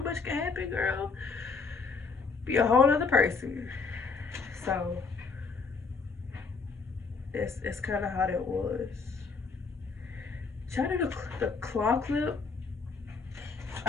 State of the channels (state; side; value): quieter; right; 4.6 dB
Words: much can happen, girl. Be a whole other person. So that's kind of how that was. Try to do the claw clip.